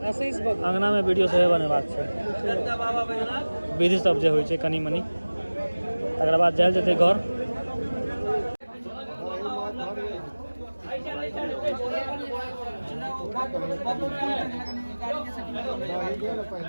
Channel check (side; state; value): both; inverted; correlation -1.00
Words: अंगना में वीडियो सेहो बनेबाक छै विधि सब जे होइ छै कनी मनी तकर बाद जायल जेतै घर